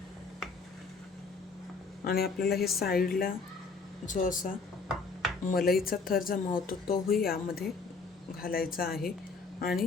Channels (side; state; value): right; quieter; 4.4 dB